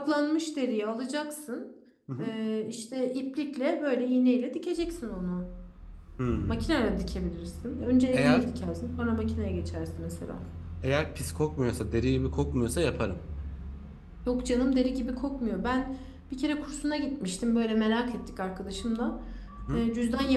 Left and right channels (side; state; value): both; identical; correlation 1.00